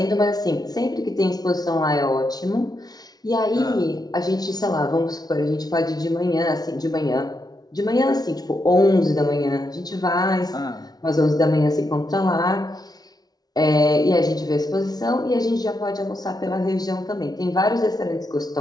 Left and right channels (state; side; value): late; right; 0.19 ms